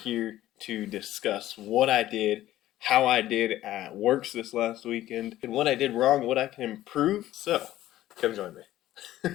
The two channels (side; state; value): right; quieter; 14.3 dB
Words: to discuss what I did, how I did at WORCS this last weekend, and what I did wrong, what I can improve. So, come join me.